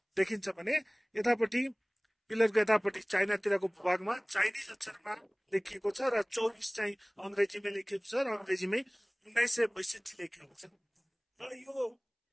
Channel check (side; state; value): both; identical; correlation 1.00